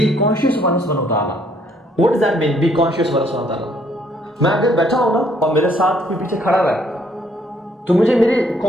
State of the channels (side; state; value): both; normal; correlation 0.66